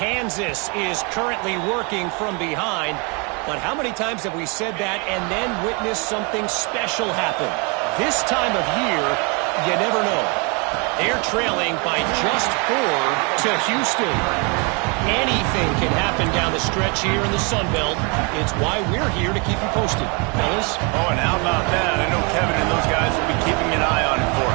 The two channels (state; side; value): quieter; left; 32.2 dB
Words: is currently working from behind, but how many times have we said that and then witnessed something special happen? This time of year, you never know. They're trailing by just 4 to Houston. Anything can happen down the stretch here in the Sun Belt. It's why we're here to keep you posted, fellas. Oh, and how about that? I know Kevin and those guys will be keeping an eye on it for